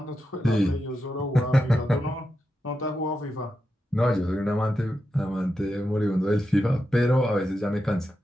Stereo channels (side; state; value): both; normal; correlation 0.88